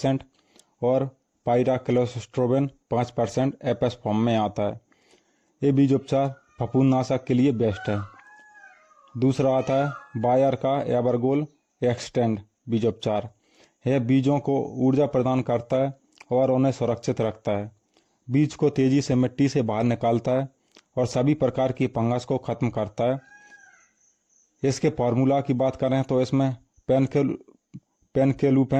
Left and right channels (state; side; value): identical; both; correlation 1.00